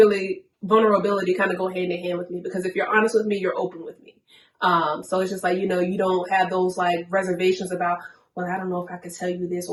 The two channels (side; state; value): both; identical; correlation 1.00